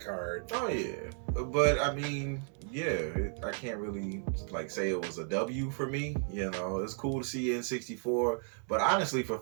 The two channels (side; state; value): left; silent; 55 dB below the other